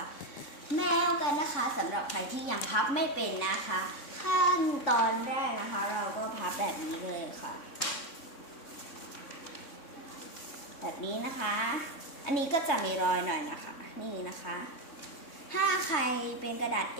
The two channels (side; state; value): right; late; 3.6 ms